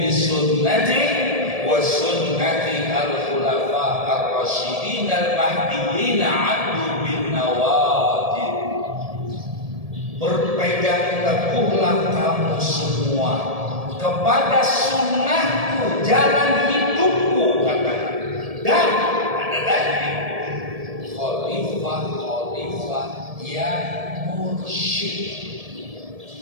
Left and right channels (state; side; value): late; left; 1.7 ms